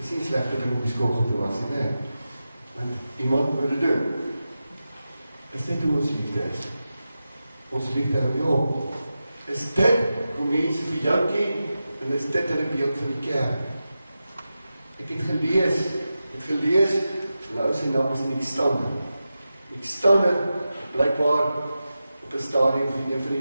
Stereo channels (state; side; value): inverted; both; correlation -0.92